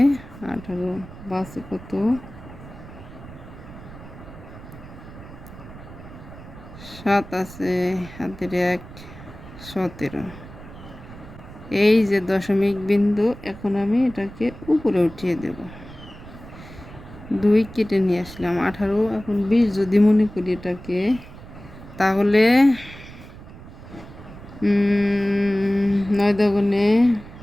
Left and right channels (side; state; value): right; noise; rumble, 16 dB below the sound